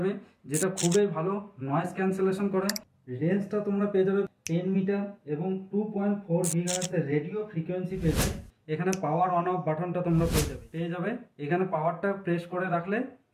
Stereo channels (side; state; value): both; identical; correlation 1.00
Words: যেটা খুবই ভালো নয়েজ ক্যান্সেলেশন করে। রেঞ্জটা তোমরা পেয়ে যাবে 10 মিটার এবং 2.4 গিগাহার্টজের রেডিও ফ্রিকোয়েন্সি পেয়ে যাবে। এখানে পাওয়ার অন অফ বাটনটা তোমরা পেয়ে যাবে। এখানে পাওয়ারটা প্রেস করে রাখলে